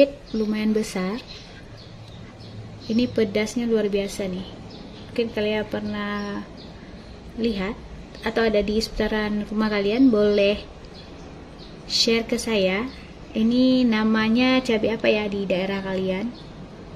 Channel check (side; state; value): both; identical; correlation 1.00